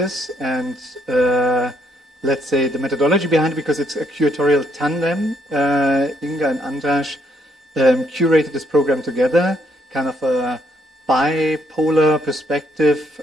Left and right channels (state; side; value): normal; both; correlation 0.72